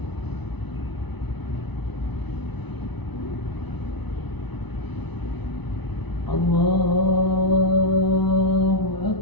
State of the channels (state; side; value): late; right; 0.99 ms